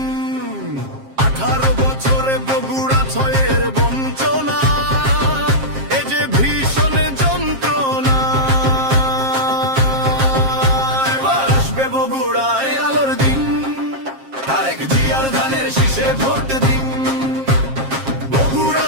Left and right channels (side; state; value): left; late; 7.5 ms